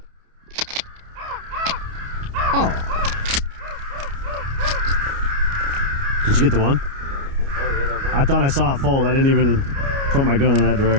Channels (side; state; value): left; late; 29 ms